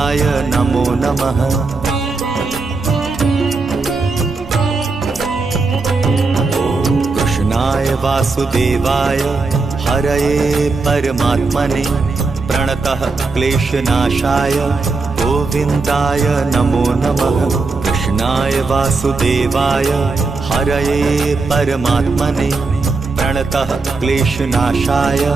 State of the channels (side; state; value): left; quieter; 4.0 dB